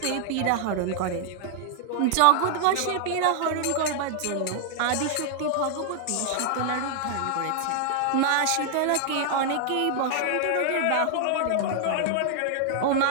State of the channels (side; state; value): both; different; correlation 0.00